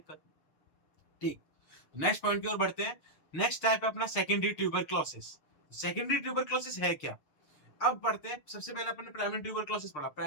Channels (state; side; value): late; right; 6.6 ms